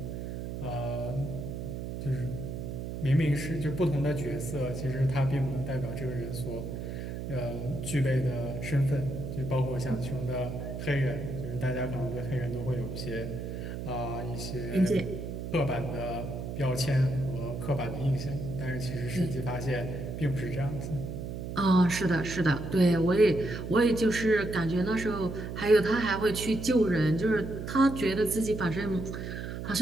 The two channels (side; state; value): right; noise; hum, 6 dB below the sound